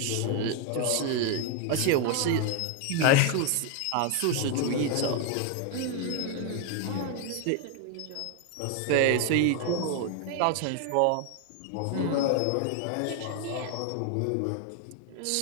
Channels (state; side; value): different; both; correlation 0.01